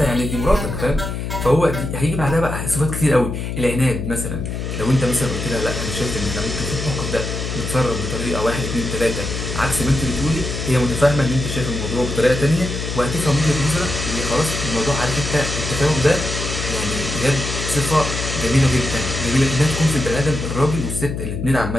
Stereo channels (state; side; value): noise; left; hum, 4 dB below the sound